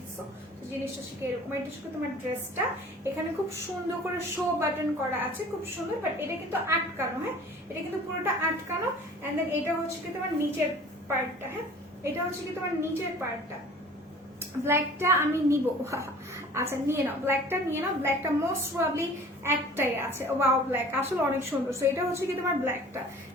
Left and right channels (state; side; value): normal; both; correlation 0.46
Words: জিনিসটা শিখে এরকম। এটা শিখে তোমার ড্রেসটা এখানে খুব সুন্দর করে শো বাটন করা আছে, খুব সুন্দর, বাট এটা কিন্তু আটকানো, হ্যাঁ এটা কিন্তু পুরোটা আটকানো। এন্ড দেন এটা হচ্ছে কি তোমার নিচের পার্টটা, হ্যাঁ এটা হচ্ছে কি তোমার নিচের পার্টটা। ব্ল্যাকটা আমি নিব, আচ্ছা নিয়ে নাও, ব্ল্যাকটা নিয়ে নাও। ব্ল্যাকটা মোস্ট প্রবাবলি একটাই আছে। ওয়াও, ব্ল্যাক আসলে অনেক সুন্দর। সো এটা হচ্ছে কি তোমার ব্ল্যাকটা,